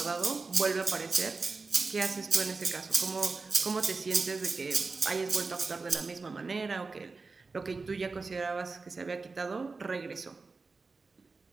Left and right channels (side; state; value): left; quieter; 4.1 dB